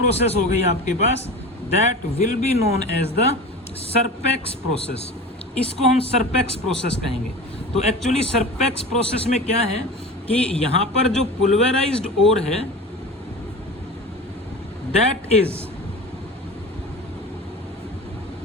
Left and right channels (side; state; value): both; normal; correlation 0.33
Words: हो गई आपके पास, that will be known as the Serpeck's process. इसको हम सरपेक्स प्रोसेस कहेंगे। तो एक्चुअली सरपेक्स प्रोसेस में क्या है कि यहां पर जो पुल्वेराइज्ड ओर है that is